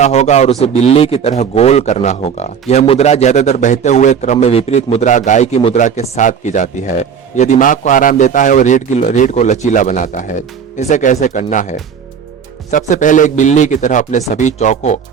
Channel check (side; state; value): left; quieter; 7.3 dB